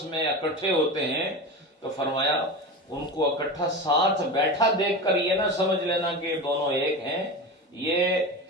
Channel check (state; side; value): normal; both; correlation 0.25